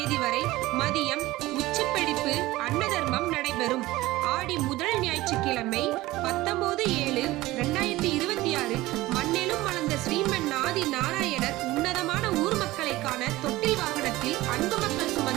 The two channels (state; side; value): quieter; left; 18.2 dB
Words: வரை மதியம் உச்சிப்பிடிப்பு அன்னதர்மம் நடைபெறும். ஆடி முதல் ஞாயிற்றுக்கிழமை 19/7/2026 மண்ணேலும் மலர்ந்த ஸ்ரீமன் ஆதி நாராயணர் உன்னதமான ஊர் மக்களை காண தொட்டில் வாகனத்தில் அன்பு மக்கள்